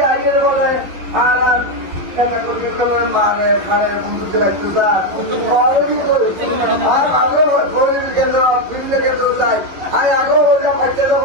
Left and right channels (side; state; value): left; late; 11 ms